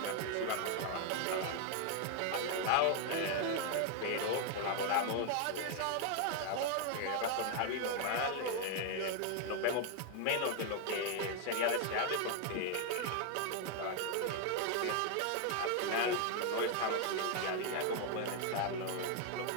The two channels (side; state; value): both; different; correlation 0.00